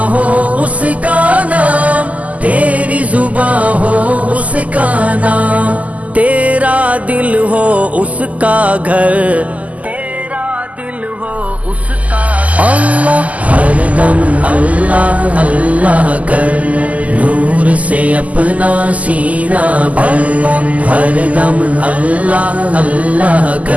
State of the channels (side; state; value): left; late; 0.073 ms